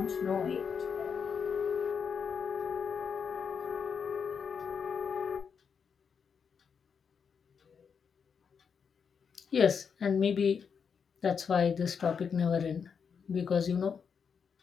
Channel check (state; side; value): quieter; right; 6.4 dB